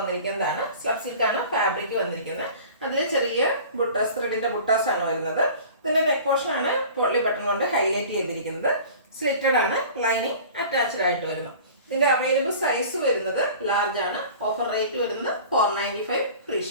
സ്ലബ് സിൽക്കാണ് ഫാബ്രിക് വന്നിരിക്കുന്നത്. അതിൽ ചെറിയ ബുട്ടാസ്, ത്രെഡിന്റെ ബുട്ടാസ് ആണ് വരുന്നത്. ഇതിന്റെ നെക്ക് പോർഷൻ ആണ് പോട്ട്ലി ബട്ടൺ കൊണ്ട് ഹൈലൈറ്റ് ചെയ്തിരിക്കുന്നത്. സ്ലിറ്റഡ് ആണ്, ലൈനിങ് അറ്റാച്ച്ഡ് ആയിട്ട് വരുന്നു. ഇതിന്റെ അവൈലബിൾ സൈസ് വരുന്നത് ലാർജ് ആണ്. ഓഫർ റേറ്റ് വരുന്നത് 495 free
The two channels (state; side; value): inverted; both; correlation -0.42